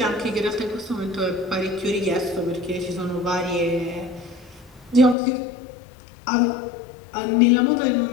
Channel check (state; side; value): drops out; right; at 5.2 s